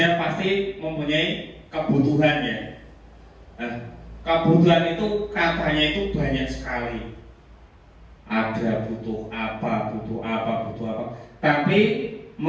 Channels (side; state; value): both; identical; correlation 1.00